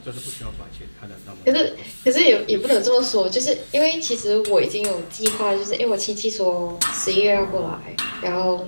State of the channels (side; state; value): both; inverted; correlation -1.00